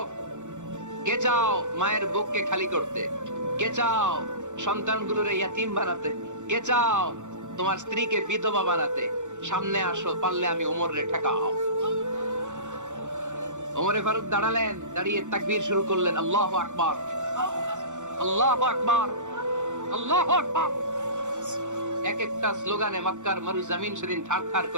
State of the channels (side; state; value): left; late; 0.85 ms